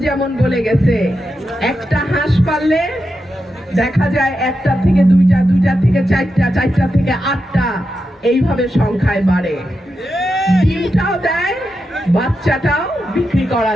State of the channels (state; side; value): normal; both; correlation 0.88